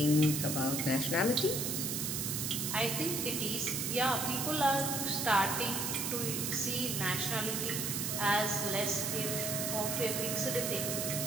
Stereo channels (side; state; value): right; noise; hiss, 1 dB below the sound